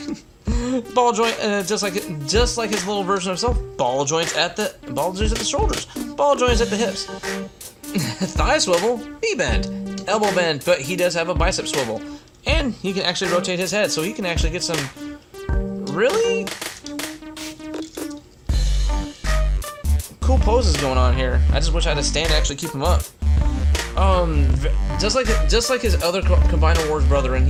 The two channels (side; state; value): both; identical; correlation 1.00